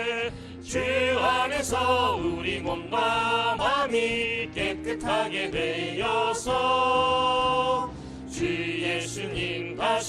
주 안에서 우리 몸과 마음이 깨끗하게 되어서 주 예수님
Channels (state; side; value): identical; both; correlation 1.00